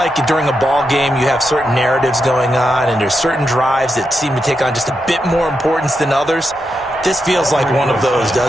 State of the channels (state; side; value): normal; both; correlation 0.85